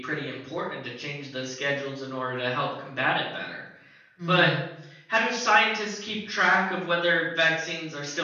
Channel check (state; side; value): identical; both; correlation 1.00